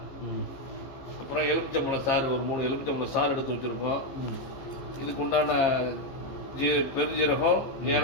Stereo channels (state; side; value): late; right; 15 ms